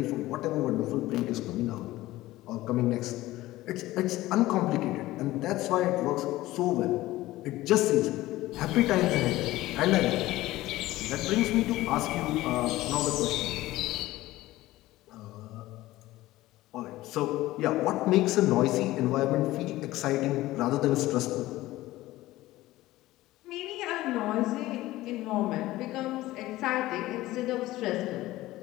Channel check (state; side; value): quieter; right; 17.0 dB